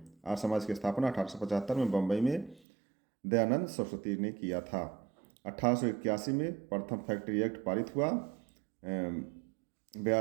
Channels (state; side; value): drops out; left; at 2.6 s